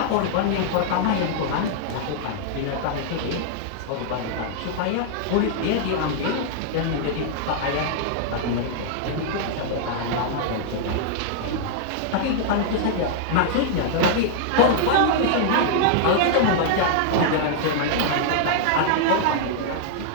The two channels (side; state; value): both; different; correlation -0.01